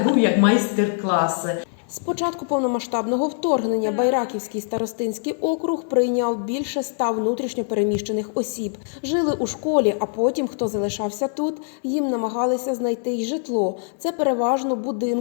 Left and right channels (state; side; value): silent; right; digital silence